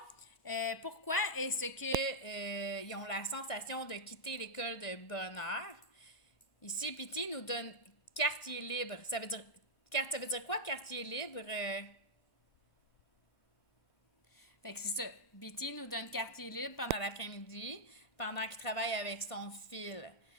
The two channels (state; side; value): late; right; 1.5 ms